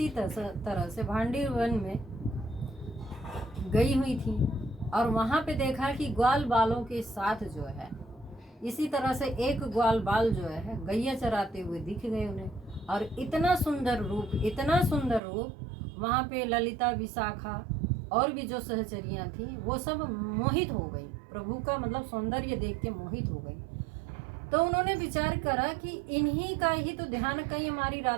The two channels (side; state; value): left; drops out; at 15.2 s